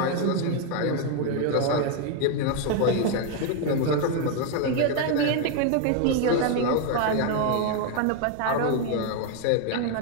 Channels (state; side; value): different; both; correlation 0.01